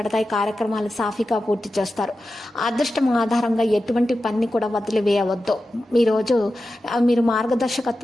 కార్యక్రమాలు సాఫీగా పూర్తి చేస్తారు. అదృష్టం ఆధారంగా ఎటువంటి పని కూడా వదిలివేయవద్దు. ఈరోజు మీరు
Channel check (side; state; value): both; normal; correlation 0.92